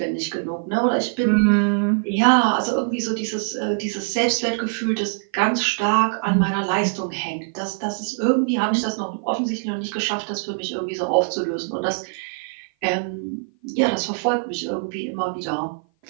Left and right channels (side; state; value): left; silent; 56 dB below the other